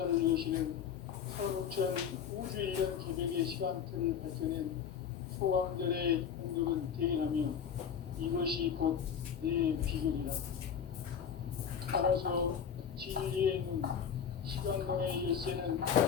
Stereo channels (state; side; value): quieter; right; 7.8 dB